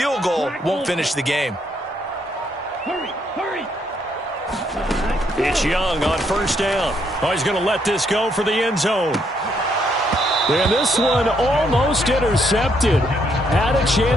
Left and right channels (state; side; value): normal; both; correlation 0.73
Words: goal won't finish the game. Hurry, hurry. It's Young on first down. Oh, he's going to let this go for the end zone. And this one almost intercepted. Had a